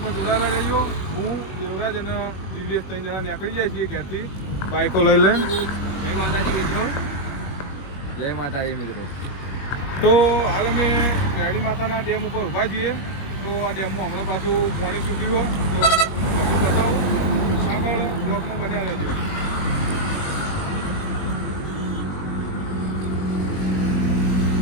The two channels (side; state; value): right; late; 21 ms